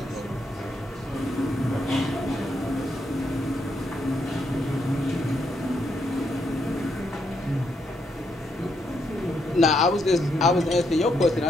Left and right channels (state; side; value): normal; both; correlation 0.78